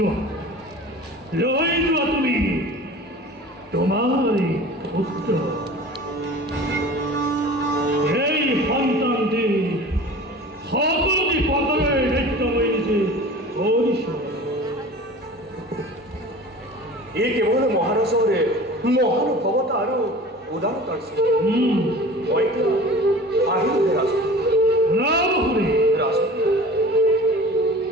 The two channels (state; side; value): normal; both; correlation 0.40